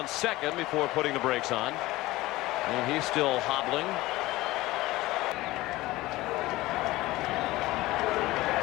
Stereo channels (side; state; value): right; quieter; 18.5 dB